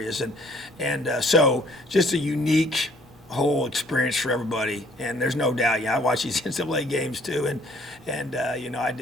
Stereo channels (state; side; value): normal; both; correlation 0.60